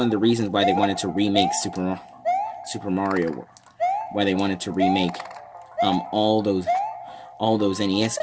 the reasons why they wanted to remake Super Mario. Why they wanted to remake all those NES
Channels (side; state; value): both; identical; correlation 1.00